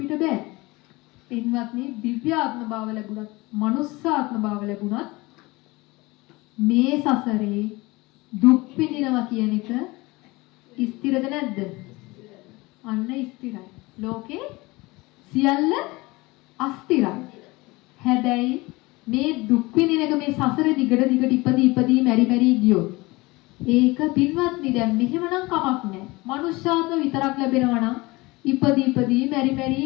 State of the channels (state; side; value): quieter; right; 22.5 dB